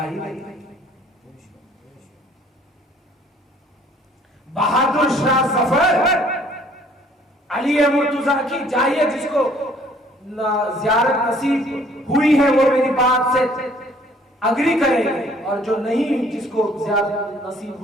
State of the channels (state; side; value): normal; both; correlation 0.58